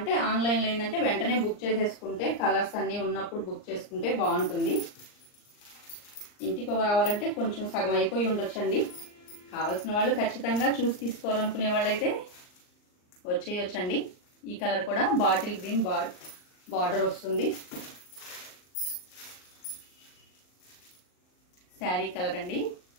ఆన్లైన్లో ఏంటంటే వెంటనే బుక్ చేసేసుకుంటే కలర్స్ అన్నీ ఉన్నప్పుడు బుక్ చేసుకుంటే బాగుంటుంది. ఇంటికి రావాలంటే కొంచెం సగం అయిపోయి ఉండొచ్చండి. కావాల్సిన వాళ్ళు ఖచ్చితంగా చూసి తీసుకోవాలనుకునే వాళ్ళైతే వచ్చేయొచ్చండి. ఈ కలర్ కూడా బాటిల్ గ్రీన్ బార్డర్ వస్తుంది. శారీ కలర్ అండి,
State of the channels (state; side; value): late; right; 39 ms